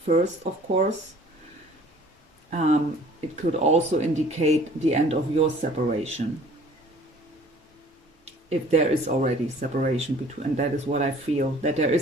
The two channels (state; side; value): normal; both; correlation 0.51